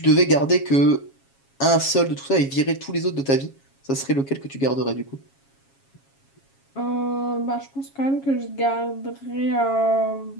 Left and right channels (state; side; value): late; right; 7.3 ms